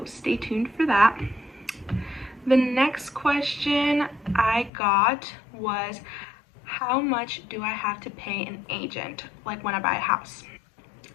stay tuned for that. The next question I got was, how much do I have to pay an agent, like when I buy a house?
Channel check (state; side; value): drops out; right; at 4.7 s